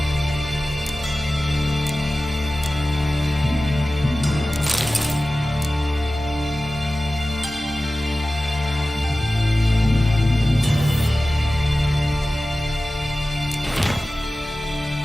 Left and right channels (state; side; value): normal; both; correlation 0.95